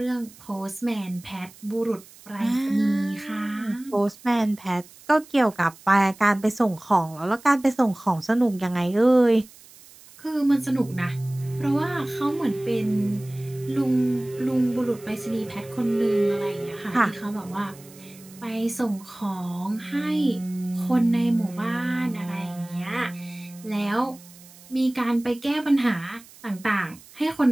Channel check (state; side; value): noise; right; hiss, 22 dB below the sound